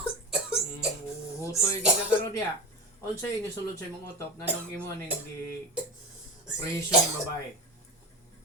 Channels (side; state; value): both; normal; correlation 0.28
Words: Hutoy gigakaroon niya. Unsay inisulod sa imong utok nanong imo ning presyo ng babae.